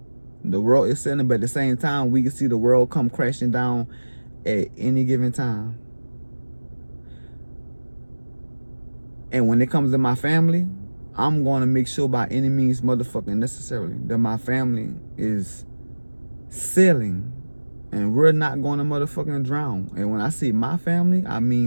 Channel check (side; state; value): both; inverted; correlation -1.00